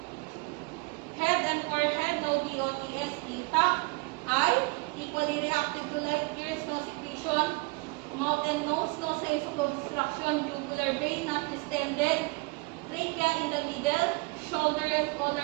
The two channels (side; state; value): left; quieter; 27.4 dB